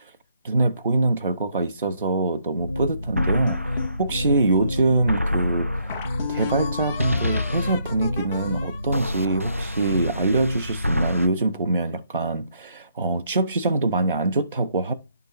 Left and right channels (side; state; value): both; inverted; correlation -0.71